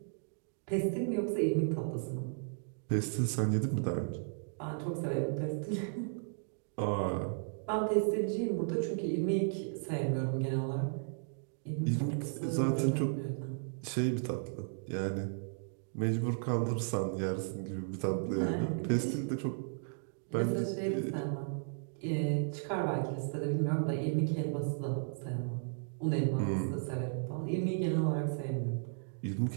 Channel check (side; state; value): left; silent; digital silence